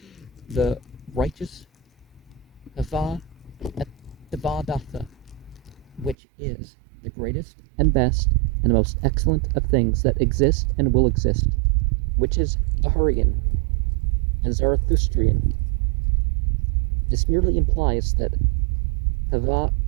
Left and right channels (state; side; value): drops out; left; at 6.2 s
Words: the righteous Hava et Havadatha, which is the greatest and best and most excellent of things that exist and will exist, which is Ahurian and Zarathustrian. This merely implies that Hava